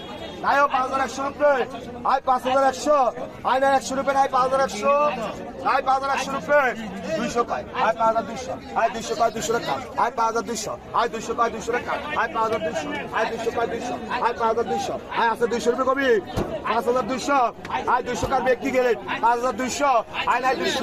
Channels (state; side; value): identical; both; correlation 1.00